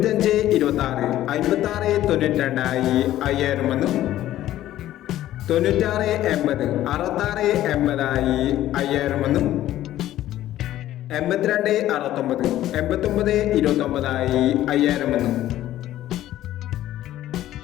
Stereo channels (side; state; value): right; quieter; 13.6 dB